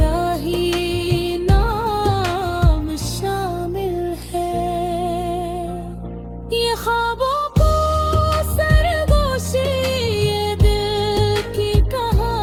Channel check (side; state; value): both; identical; correlation 1.00